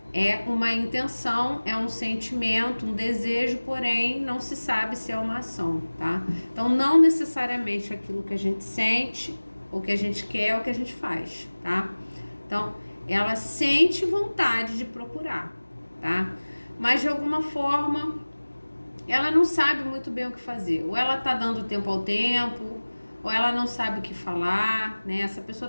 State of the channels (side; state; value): both; inverted; correlation -1.00